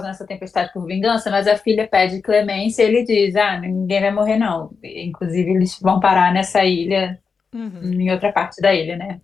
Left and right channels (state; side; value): quieter; right; 5.3 dB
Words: essa tempestade por vingança, mas a filha pede clemência e ele diz, ninguém vai morrer não. Inclusive eles vão parar nessa ilha, Uhum. em outra parte da ilha, né?